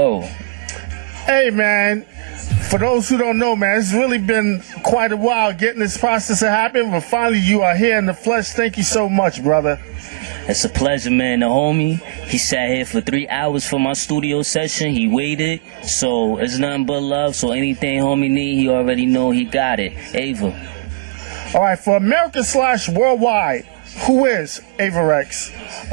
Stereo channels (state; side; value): quieter; left; 23.7 dB